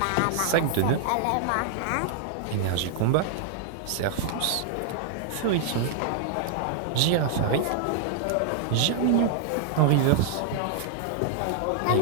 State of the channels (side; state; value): both; different; correlation -0.01